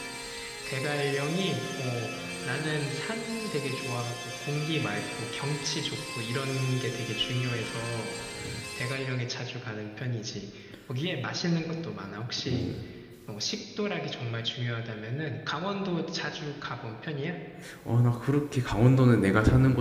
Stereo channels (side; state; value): both; identical; correlation 1.00